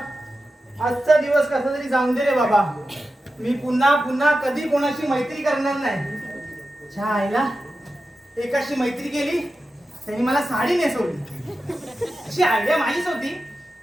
आजचा दिवस कसा तरी जाऊन दे रे बाबा. मी पुन्हा पुन्हा कधी कोणाशी मैत्री करणार नाही. छा आईला एकाशी मैत्री केली त्यांनी मला साडी नेसवली. अशी आयडिया माझीच होती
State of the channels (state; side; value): normal; both; correlation 0.92